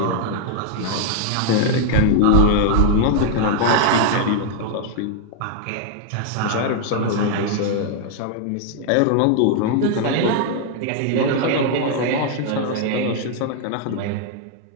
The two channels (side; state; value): both; different; correlation 0.00